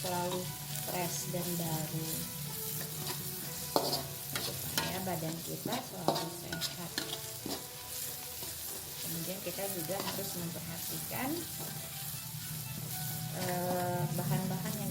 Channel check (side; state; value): both; identical; correlation 1.00